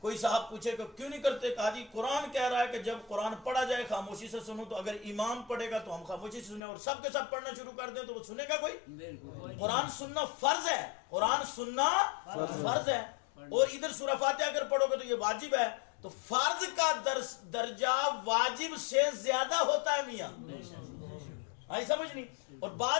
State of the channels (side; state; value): right; drops out; at 6.6 s